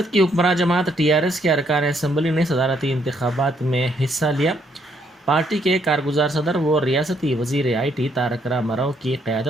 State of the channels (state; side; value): normal; both; correlation 0.71